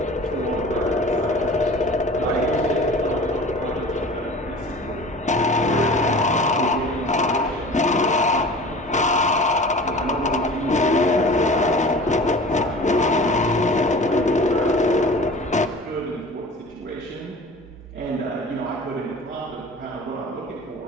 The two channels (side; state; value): both; normal; correlation 0.41